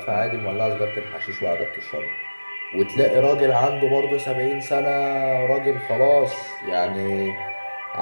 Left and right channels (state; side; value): inverted; both; correlation -1.00